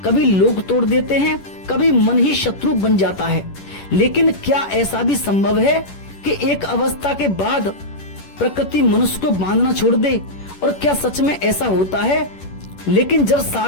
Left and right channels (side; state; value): right; late; 10 ms